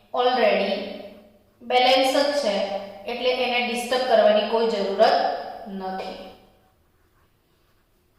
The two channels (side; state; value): both; identical; correlation 1.00